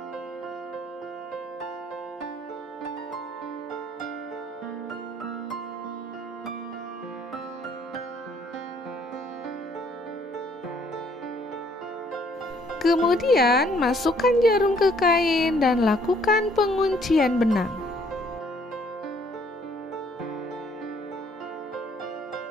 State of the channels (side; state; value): both; normal; correlation 0.63